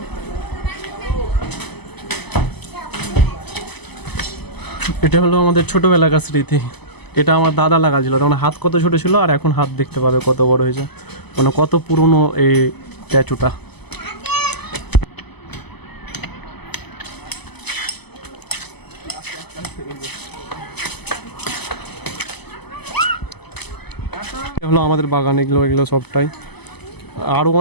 এটা হলো আমাদের ছোটবেলাকার স্মৃতি। এটা আমার দাদা লাগাছিল, তখন হাত কত ছোট ছিল, আর এখন হাত দেখতে পাবে কত বড় হয়েছে, মানে কত পুরনো এই স্ট্যাচুটা। হলো আমাদের বাগান, এগুলো সবটাই। আরও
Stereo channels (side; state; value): right; late; 0.99 ms